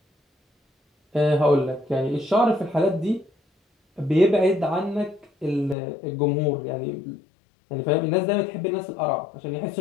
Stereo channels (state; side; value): drops out; right; at 5.8 s